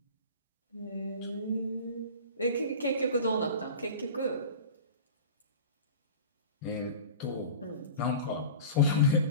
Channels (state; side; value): inverted; both; correlation -0.36